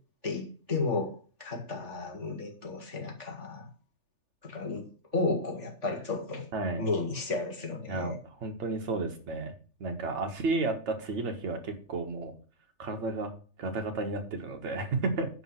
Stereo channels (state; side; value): late; left; 3.4 ms